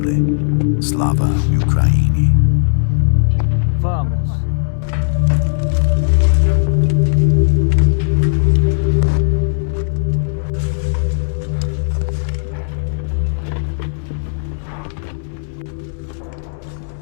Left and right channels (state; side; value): silent; right; digital silence